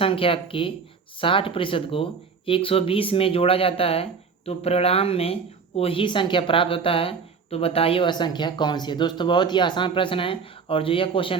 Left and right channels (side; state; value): left; quieter; 5.5 dB